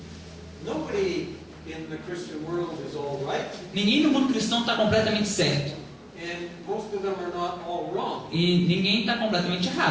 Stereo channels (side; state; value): both; identical; correlation 1.00